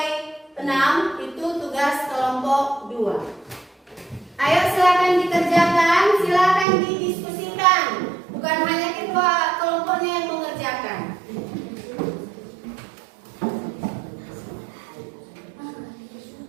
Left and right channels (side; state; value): left; drops out; at 6.7 s